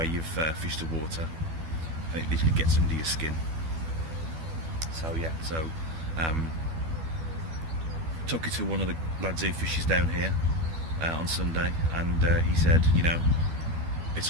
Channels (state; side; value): late; left; 12 ms